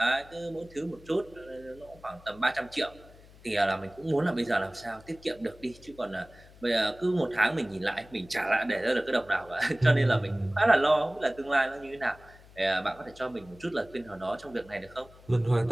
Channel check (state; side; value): noise; left; hum, 23 dB below the sound